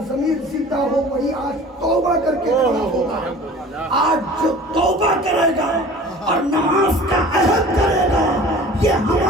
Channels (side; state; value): both; normal; correlation 0.43